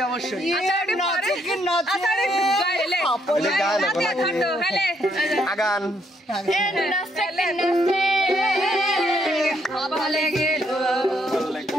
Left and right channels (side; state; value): both; normal; correlation 0.73